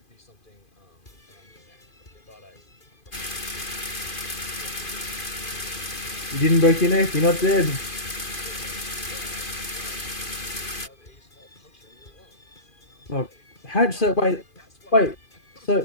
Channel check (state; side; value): late; right; 2.5 ms